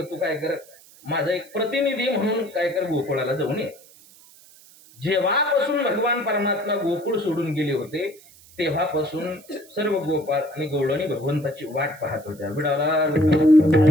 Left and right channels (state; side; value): noise; right; hiss, 24 dB below the sound